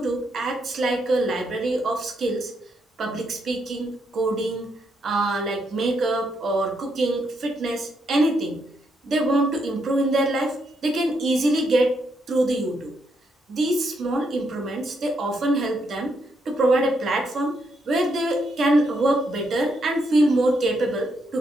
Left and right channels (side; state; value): both; normal; correlation 0.78